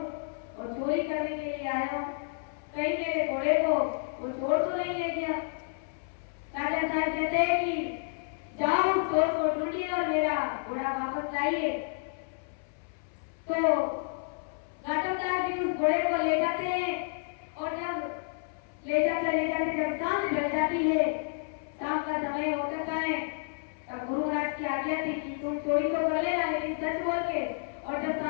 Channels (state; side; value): silent; right; 58 dB below the other